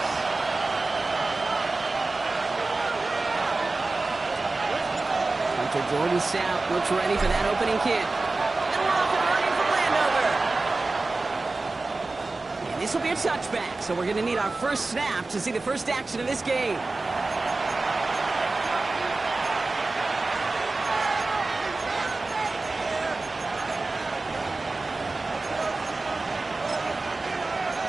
Hunter Jordan Sapp looks ready for that opening kick. And we're off and running from Landover. And this will be a touchback, so we're going to need our first snap to see the first action of this game.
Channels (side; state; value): left; quieter; 3.4 dB